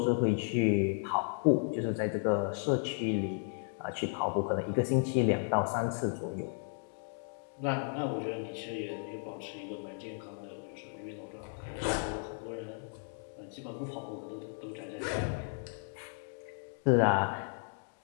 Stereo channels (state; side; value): silent; right; 55 dB below the other